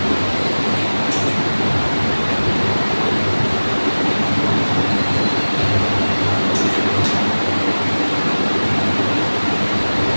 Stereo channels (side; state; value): both; inverted; correlation -1.00